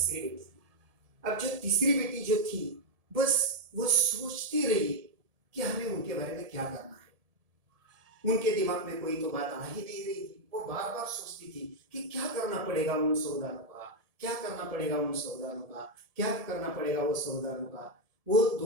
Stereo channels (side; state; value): left; late; 1.7 ms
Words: बेटी की। अब जो तीसरी बेटी जो थी, बस वो सोचती रही कि हमें उनके बारे में क्या करना है। उनके दिमाग में कोई तो बात आ ही नहीं रही थी। वो बार बार सोचती थी कि क्या करना पड़ेगा उन सौदानों का, क्या करना पड़ेगा उन सौदानों का, क्या करना पड़ेगा वो सौदानों का। वो